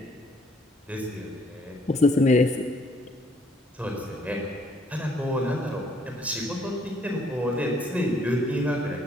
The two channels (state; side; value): normal; both; correlation 0.64